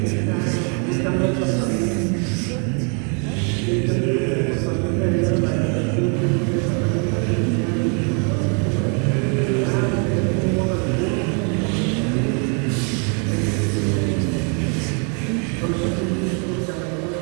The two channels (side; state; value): left; quieter; 38.0 dB